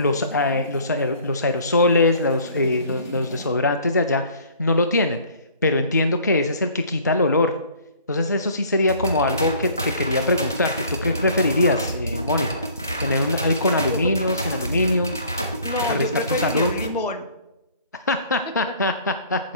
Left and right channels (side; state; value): both; inverted; correlation -0.53